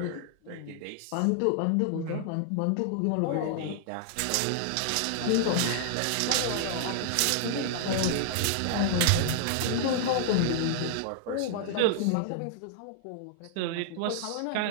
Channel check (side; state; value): both; different; correlation -0.01